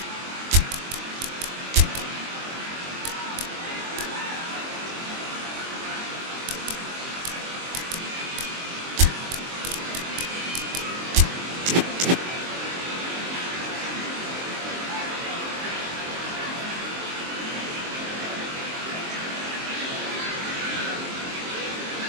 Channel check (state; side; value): late; left; 23 ms